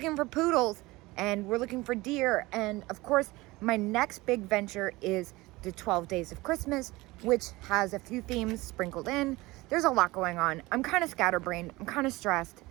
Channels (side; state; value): left; quieter; 20.8 dB